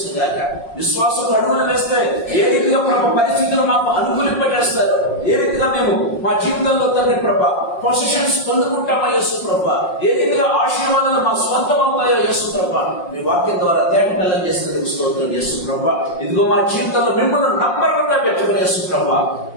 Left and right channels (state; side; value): late; right; 5.6 ms